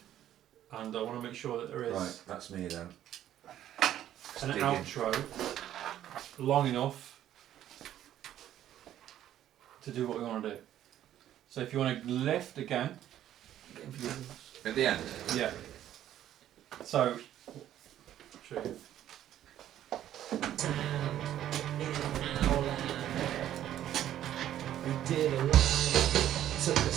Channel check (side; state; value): left; quieter; 11.8 dB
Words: and I want to make sure that there is Right, that's me then. an dig in. outro long enough to do what we want to do. So if you want to lift again, At the end. yeah. So, show you. We did a line, took a